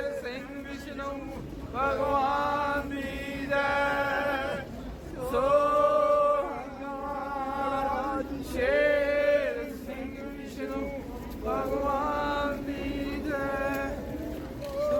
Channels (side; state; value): both; identical; correlation 1.00